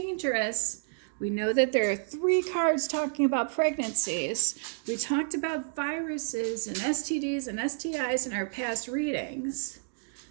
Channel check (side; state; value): left; silent; digital silence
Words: We know that there are 3 cards talking about pregnancies. We talked about viruses and STDs and STIs in our past readings.